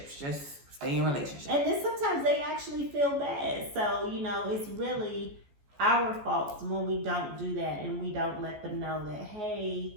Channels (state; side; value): late; left; 14 ms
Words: Just stay in relationships. And then sometimes they actually feel bad. So, you know, it's really our fault when we don't do that and we don't let them know that,